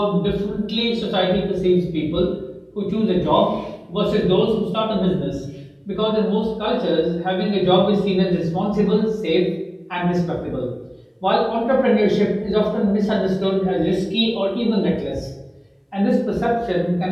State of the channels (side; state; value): both; identical; correlation 1.00